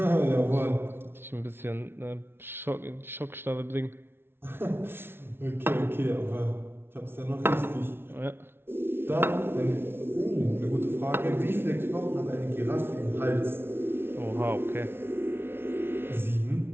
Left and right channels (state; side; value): late; left; 0.11 ms